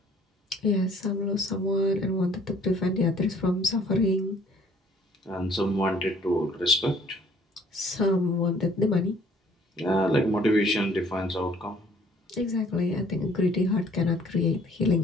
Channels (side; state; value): both; normal; correlation 0.58